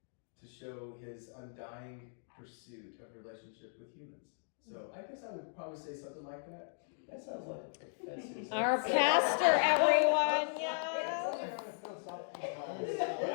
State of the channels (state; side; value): silent; right; digital silence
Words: to show his undying pursuit of relationship with humans. So I guess I would probably say something like that. That sounds like a professor. Our pastor, everyone. Yeah.